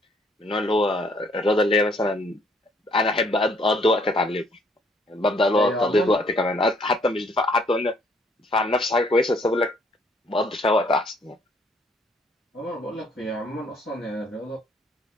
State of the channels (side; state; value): both; normal; correlation 0.64